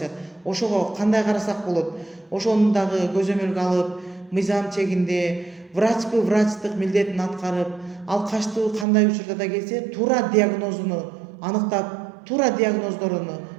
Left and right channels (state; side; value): drops out; left; at 8.8 s